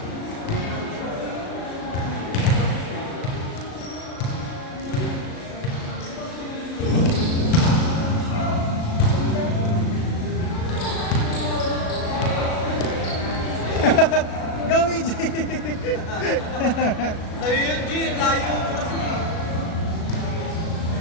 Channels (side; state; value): right; late; 37 ms